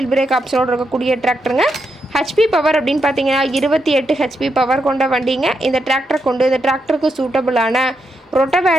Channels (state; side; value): normal; both; correlation 0.82